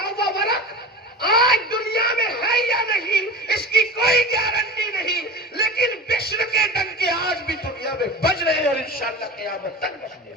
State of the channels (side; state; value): both; normal; correlation 0.32